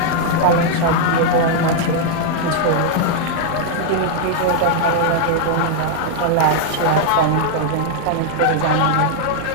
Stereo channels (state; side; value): different; both; correlation -0.01